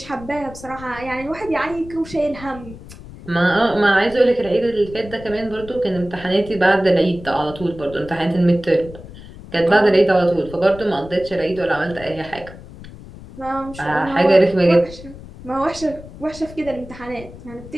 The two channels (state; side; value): noise; left; rumble, 16 dB below the sound